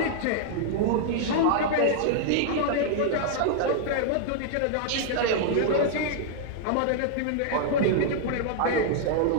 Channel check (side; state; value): both; different; correlation -0.01